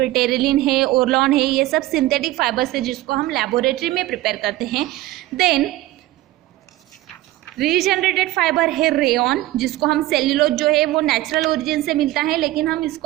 टेरिलिन है, ओरलॉन है, ये सब सिंथेटिक फाइबर्स है जिसको हम लेबोरेटरी में प्रिपेयर करते हैं। देन रीजनरेटेड फाइबर है रेयॉन, जिसको हम सेल्यूलोज जो है वो नेचुरल ओरिजिन से मिलता है, लेकिन हम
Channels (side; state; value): left; quieter; 16.7 dB